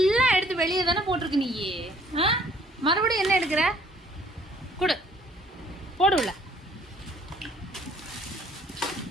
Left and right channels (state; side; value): normal; both; correlation 0.60